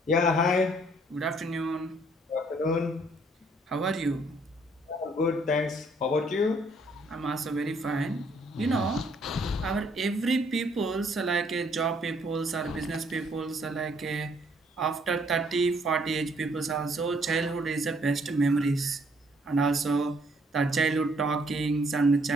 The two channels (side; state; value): both; normal; correlation 0.65